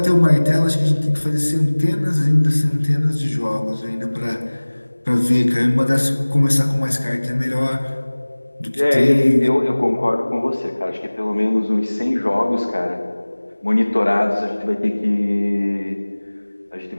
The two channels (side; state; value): both; inverted; correlation -1.00